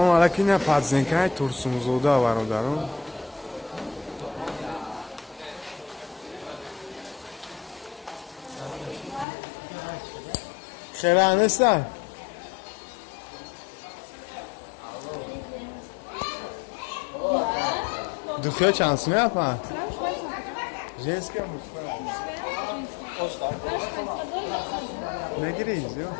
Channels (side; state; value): right; drops out; at 9.2 s